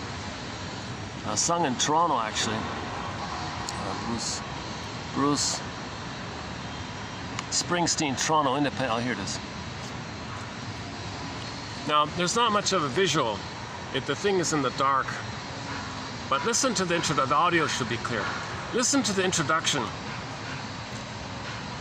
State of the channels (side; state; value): both; identical; correlation 1.00